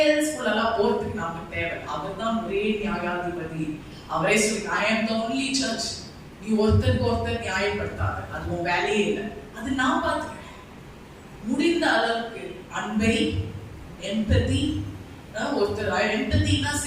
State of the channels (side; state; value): both; identical; correlation 1.00